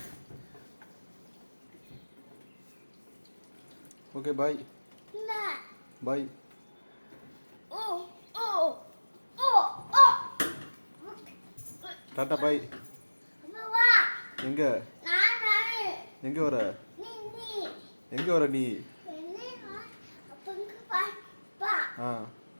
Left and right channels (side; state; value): both; inverted; correlation -1.00